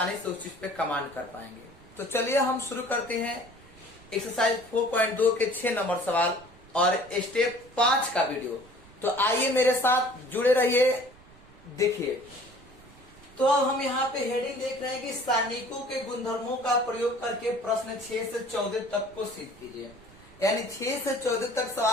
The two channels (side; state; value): right; noise; rumble, 23 dB below the sound